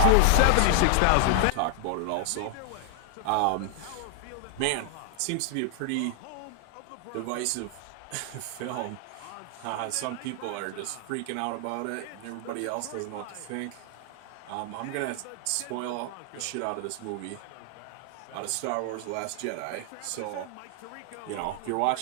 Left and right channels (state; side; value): different; both; correlation 0.00